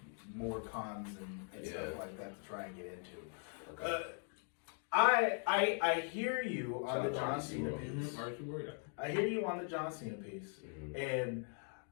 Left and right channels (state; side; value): silent; right; 51 dB below the other